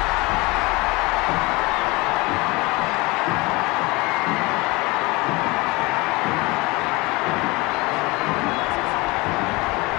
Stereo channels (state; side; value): quieter; right; 23.8 dB